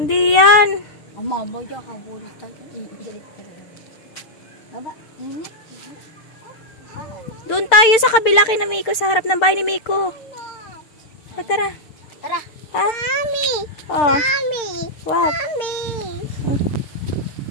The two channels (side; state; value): right; late; 6.7 ms